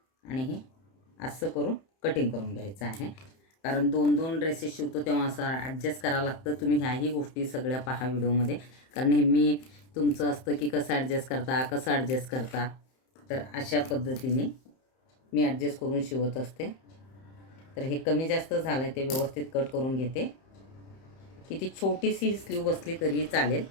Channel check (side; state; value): right; late; 31 ms